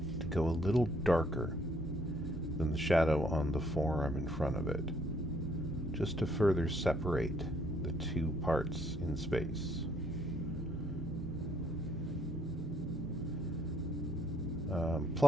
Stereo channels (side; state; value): both; normal; correlation 0.67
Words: to go a little darker than the shadow on the forearm in front of it, just to further separate the two parts in space.